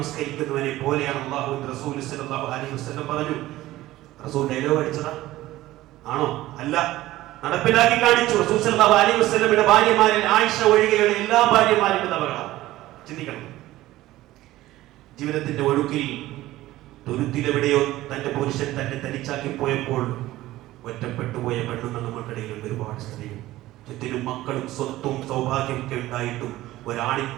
പോലെയാണ് അല്ലാഹുവിന്റെ റസൂൽ സല്ലല്ലാഹു അലൈഹി വസല്ലം പറഞ്ഞു. റസൂൽ ഡയലോഗ് അടിച്ചതാ ആണോ? അല്ല, നടപ്പിലാക്കി കാണിച്ചു. റസൂൽ സല്ലല്ലാഹു അലൈഹി വസല്ലമയുടെ ഭാര്യമാരിൽ ആയിഷ ഒഴികെയുള്ള എല്ലാ ഭാര്യമാരും വിധവകളാണ്. ചിന്തിക്കണം. ജീവിതത്തിന്റെ ഒഴുക്കിൽ തുരുത്തിലെവിടെയോ തന്റെ പുരുഷൻ തന്നെ തനിച്ചാക്കി പോയപ്പോൾ ഒറ്റപ്പെട്ടു പോയ പെണ്ണുങ്ങൾ നമ്മൾക്കിടയിലും ഒരുപാട് സ്ത്രീകൾ. ചുറ്റിനും മക്കളും സ്വത്തും സൗഭാഗ്യമൊക്കെ ഉണ്ടായിട്ടും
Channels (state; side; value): quieter; left; 16.2 dB